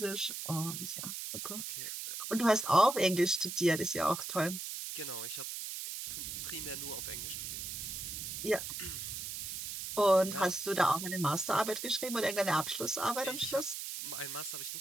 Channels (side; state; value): right; noise; hiss, 6 dB below the sound